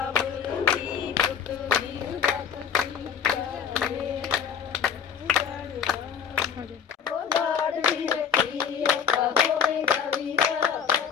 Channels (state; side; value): quieter; right; 7.5 dB